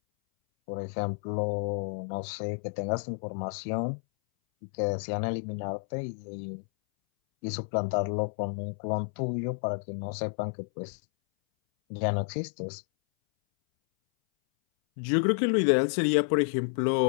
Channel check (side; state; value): right; silent; 58 dB below the other